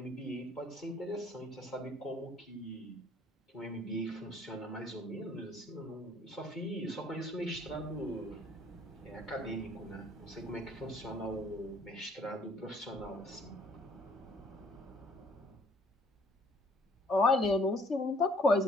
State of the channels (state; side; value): normal; both; correlation 0.61